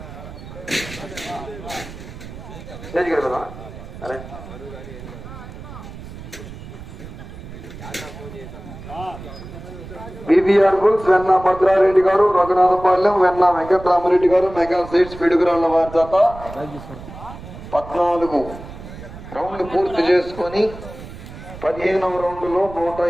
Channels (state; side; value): noise; right; rumble, 14 dB below the sound